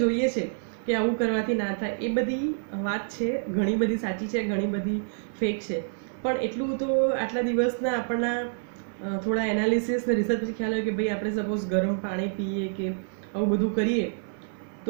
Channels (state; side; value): silent; left; 60 dB below the other